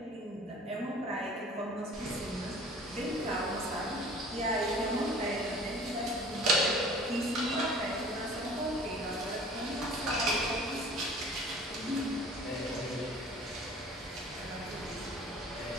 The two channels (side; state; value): both; normal; correlation 0.47